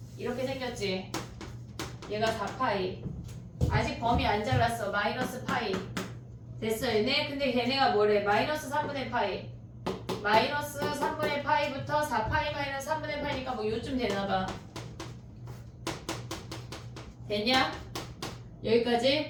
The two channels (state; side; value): identical; both; correlation 1.00